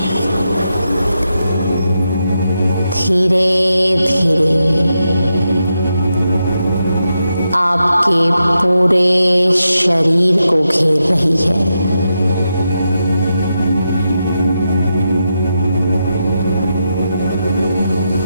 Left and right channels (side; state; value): both; inverted; correlation -0.86